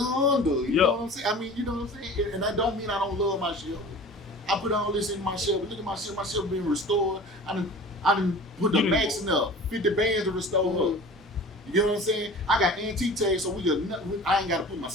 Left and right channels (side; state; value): both; normal; correlation 0.40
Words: You Yeah. know what I'm saying? I mean, you know what I'm saying? And that don't mean I don't love my Shelby. I put all this in my Shelby. Look at my Shelby. My Shelby being restored. I done put the You max in up. 50 bands to restore her. You get what I'm saying? I got antique tags, so I ain't got to put my